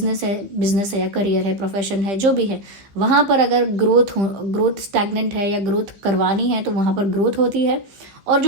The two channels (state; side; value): late; left; 15 ms